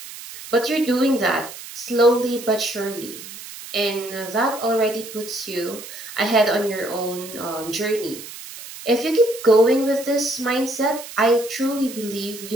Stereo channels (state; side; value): noise; right; hiss, 13 dB below the sound